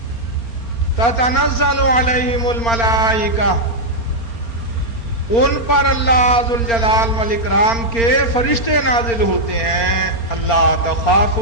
تتنزل علیہم الملائکہ، ان پر اللہ ذوالجلال والاکرام کے فرشتے نازل ہوتے ہیں. اللہ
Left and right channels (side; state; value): right; late; 4.1 ms